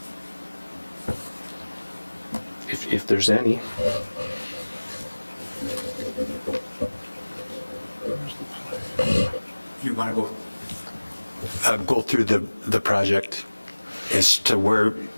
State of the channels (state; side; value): inverted; both; correlation -1.00